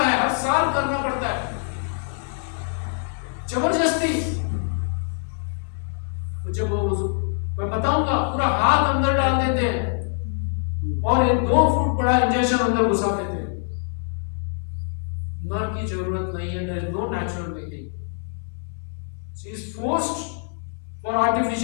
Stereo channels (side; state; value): right; silent; 61 dB below the other